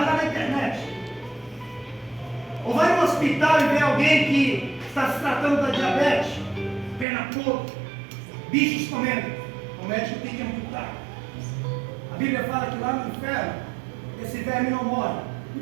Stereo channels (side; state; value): left; drops out; at 7.1 s